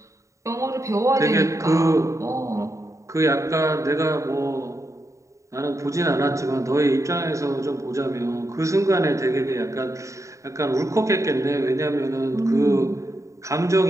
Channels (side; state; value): left; late; 0.15 ms